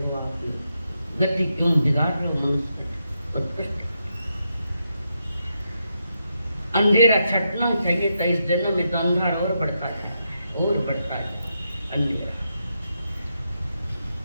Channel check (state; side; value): inverted; both; correlation -0.83